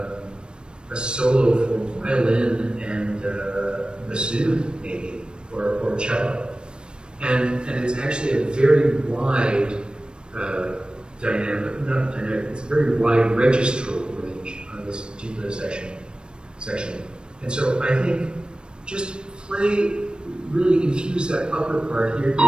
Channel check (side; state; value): left; late; 0.053 ms